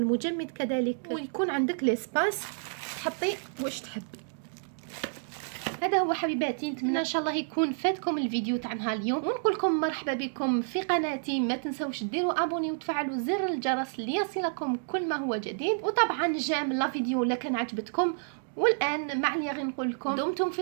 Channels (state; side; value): silent; left; digital silence